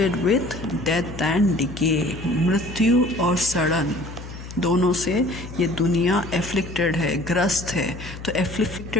with death and decay. मृत्यु और सड़न दोनों से ये दुनिया एफ्लिक्टेड है, ग्रस्त है. तो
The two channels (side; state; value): left; noise; hum, 12 dB below the sound